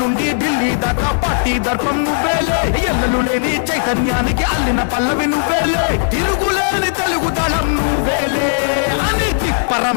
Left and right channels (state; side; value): silent; right; digital silence